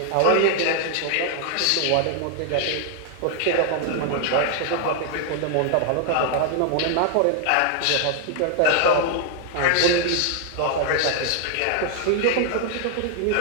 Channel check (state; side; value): different; both; correlation 0.00